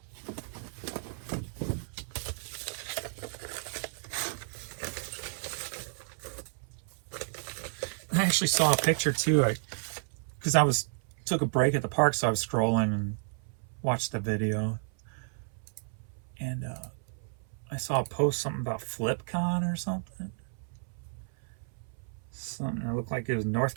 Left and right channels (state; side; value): silent; left; 56 dB below the other